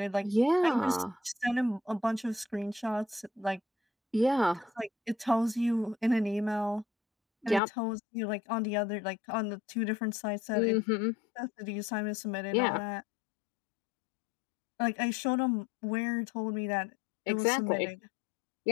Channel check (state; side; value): drops out; right; at 7.6 s